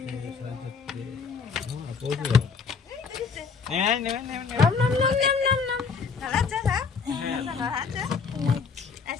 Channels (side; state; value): right; quieter; 5.5 dB